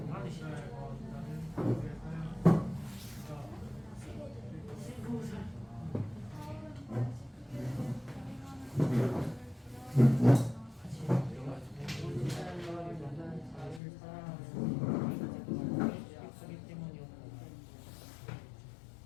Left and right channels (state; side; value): drops out; right; at 13.8 s